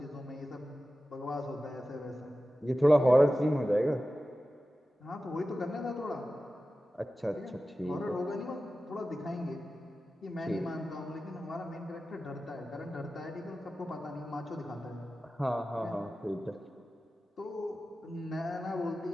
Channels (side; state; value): both; normal; correlation 0.94